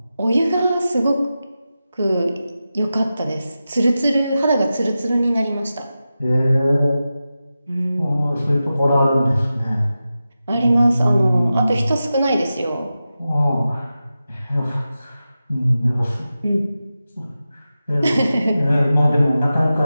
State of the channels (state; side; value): inverted; both; correlation -0.93